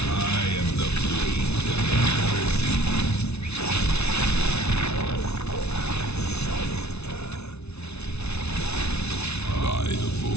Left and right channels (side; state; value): right; late; 0.80 ms